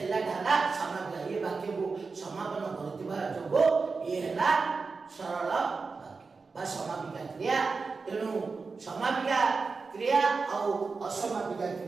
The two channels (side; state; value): left; quieter; 4.5 dB